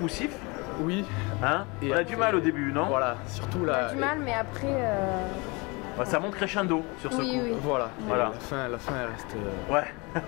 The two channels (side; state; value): right; quieter; 27.6 dB